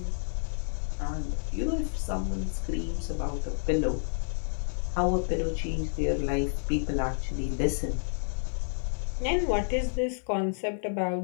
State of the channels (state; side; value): silent; right; 58 dB below the other